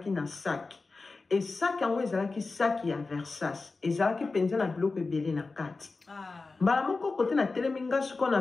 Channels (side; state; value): right; quieter; 3.8 dB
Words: na sac. Et sac yango ezalaki sac ya Versace. Ezalaki penza na biloko ebele na kati. Mbala moko kote na teleminga suko na